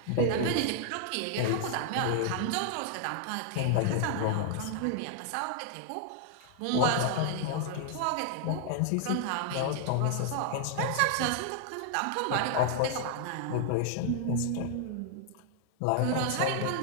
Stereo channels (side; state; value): both; different; correlation -0.01